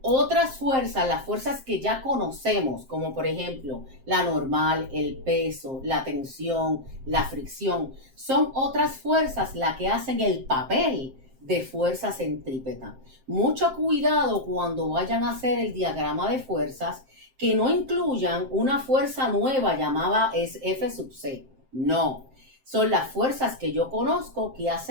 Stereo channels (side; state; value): left; late; 7.6 ms